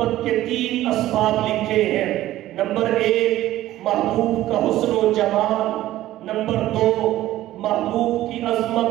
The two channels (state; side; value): quieter; left; 14.7 dB